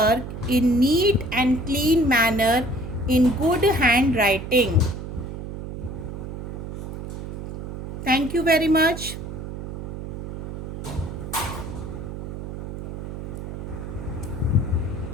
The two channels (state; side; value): noise; right; hum, 8 dB below the sound